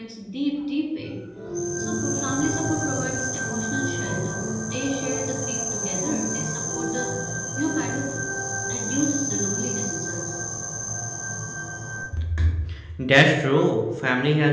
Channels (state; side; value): identical; both; correlation 1.00